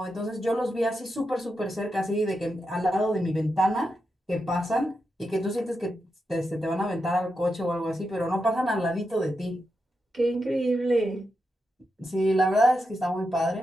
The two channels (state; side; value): normal; both; correlation 0.87